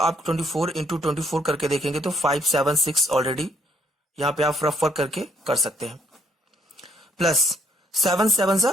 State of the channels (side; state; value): both; normal; correlation 0.68